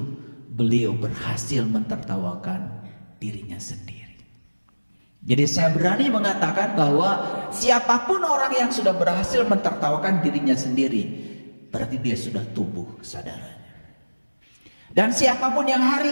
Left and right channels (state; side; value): inverted; both; correlation -1.00